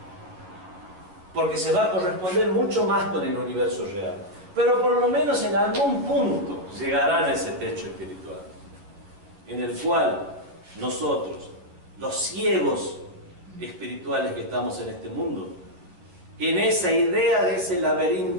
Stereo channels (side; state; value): left; late; 11 ms